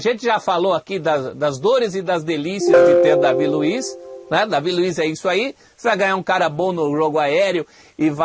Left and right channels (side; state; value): both; identical; correlation 1.00